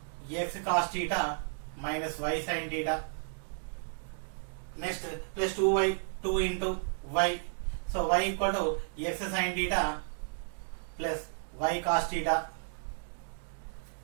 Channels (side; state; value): left; silent; digital silence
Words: x cos theta minus y sin theta. Next plus 2y 2 into y. So y equal to x sin theta plus y cos theta